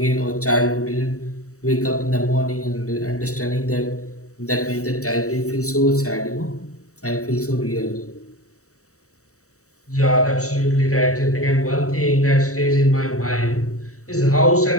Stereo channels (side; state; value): right; late; 0.65 ms